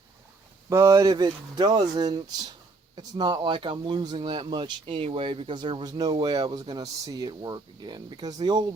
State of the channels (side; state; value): left; quieter; 3.6 dB